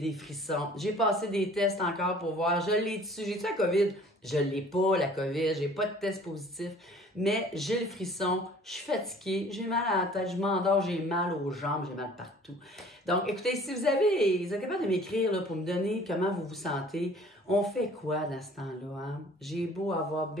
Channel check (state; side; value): normal; both; correlation 0.51